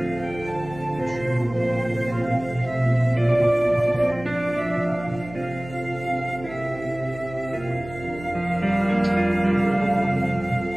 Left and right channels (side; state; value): right; noise; hum, 16 dB below the sound